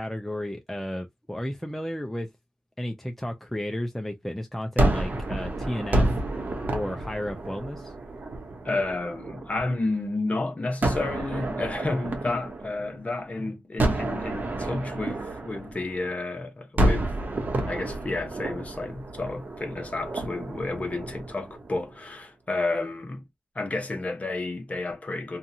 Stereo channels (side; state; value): both; normal; correlation 0.87